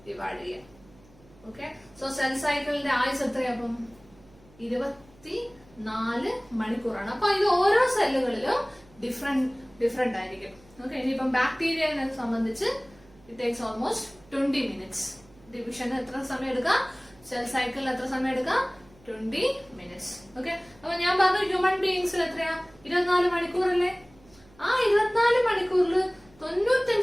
ഡിവൈഡ് ചെയ്യാം. ഓക്കെ, സോ സെൽ സൈക്കിളിന്റെ ആയുസ് എത്രയാപ്പം? 24 മണിക്കൂറാണ്. അപ്പൊ ഇത് ഓരോ സെല്ലുകളിലും ഡിഫറെന്റ് ആയിരിക്കും. ഓക്കെ, ഇനിയിപ്പം ബാക്ടീരിയനെ സംബന്ധിച്ച് ഇറ്റ് ടേക്സ് ഓൾമോസ്റ്റ് 20 minutes. ഡിവിഷന് എത്ര സമയം എടുക്കാം? സെൽ സൈക്കിളിൽ എത്ര സമയം എടുക്കാം? 20 minutes. ഓക്കെ, അപ്പൊ ഞാൻ പറഞ്ഞു ഹ്യൂമൻ ബീയിങ്സിൽ എത്രയാ? 24 മണിക്കൂറല്ലേ. ആ 24 മണിക്കൂറിൽ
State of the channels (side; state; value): right; noise; hum, 27 dB below the sound